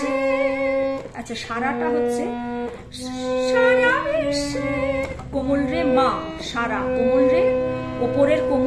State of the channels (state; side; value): identical; both; correlation 1.00